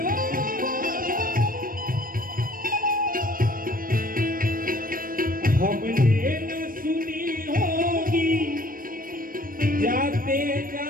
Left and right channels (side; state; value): left; late; 0.41 ms